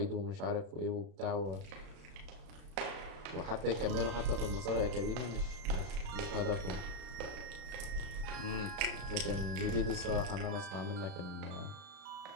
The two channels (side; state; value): left; late; 34 ms